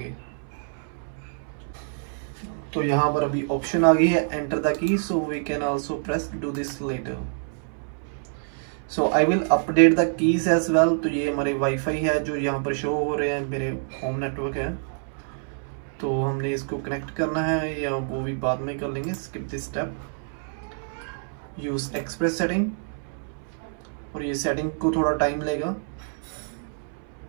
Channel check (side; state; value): left; silent; 61 dB below the other